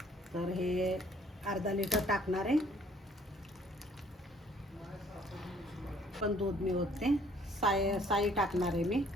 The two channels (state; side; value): normal; both; correlation 0.59